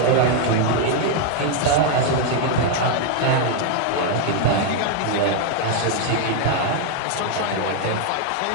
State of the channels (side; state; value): both; different; correlation 0.00